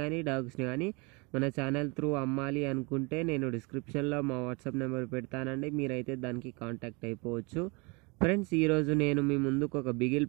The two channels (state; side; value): quieter; left; 29.0 dB